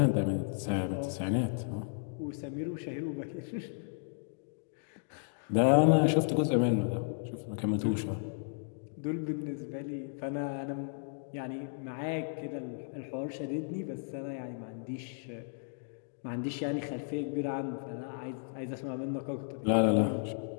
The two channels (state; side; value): silent; right; digital silence